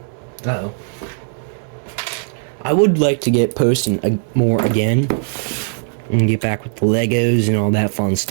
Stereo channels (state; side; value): silent; left; 65 dB below the other